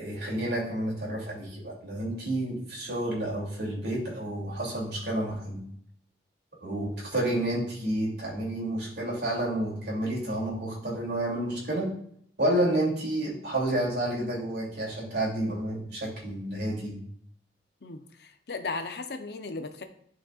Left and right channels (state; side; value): normal; both; correlation 0.44